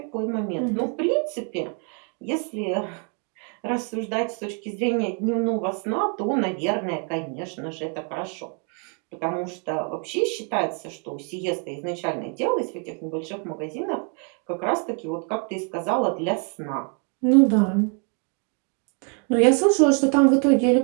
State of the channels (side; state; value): left; quieter; 39.4 dB